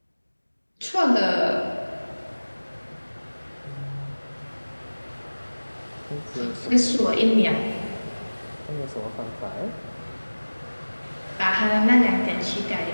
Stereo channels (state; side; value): inverted; both; correlation -1.00